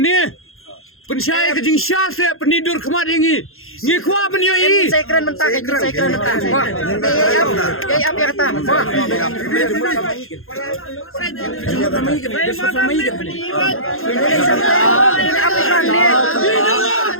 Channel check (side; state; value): right; late; 0.61 ms